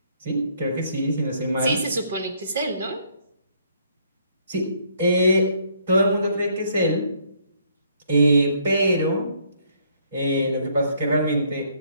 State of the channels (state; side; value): inverted; both; correlation -0.67